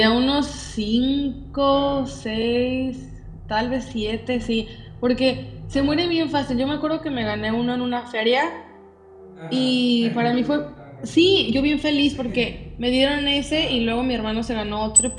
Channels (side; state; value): both; identical; correlation 1.00